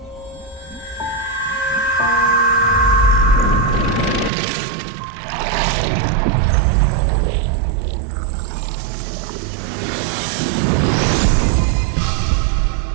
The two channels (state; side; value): drops out; left; at 4.3 s